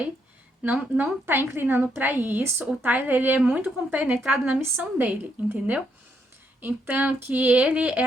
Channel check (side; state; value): both; normal; correlation 0.76